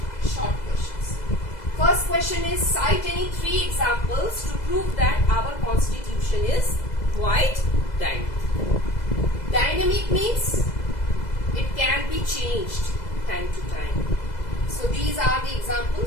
short questions. First question is, cite any 3 examples to prove that our constitution is quite dynamic. Dynamic means it can be changed time to time. So these are the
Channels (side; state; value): right; late; 2.0 ms